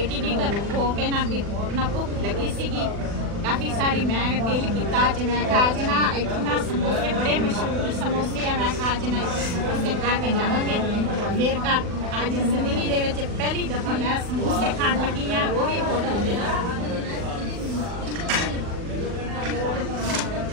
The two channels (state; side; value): late; left; 40 ms